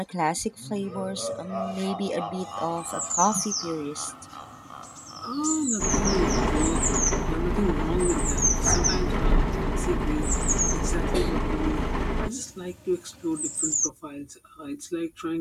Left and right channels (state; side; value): identical; both; correlation 1.00